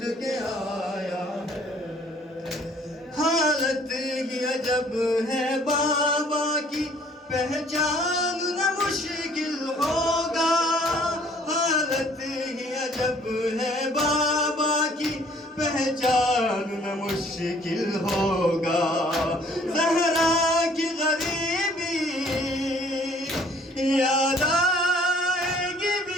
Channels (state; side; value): normal; both; correlation 0.58